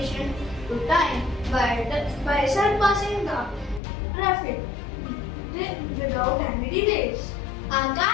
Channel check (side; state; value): right; drops out; at 3.8 s